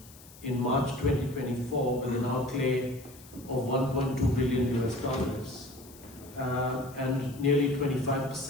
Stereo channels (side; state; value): left; noise; hiss, 21 dB below the sound